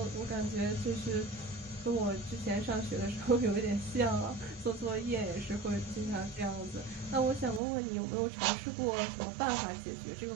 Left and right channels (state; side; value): drops out; left; at 7.6 s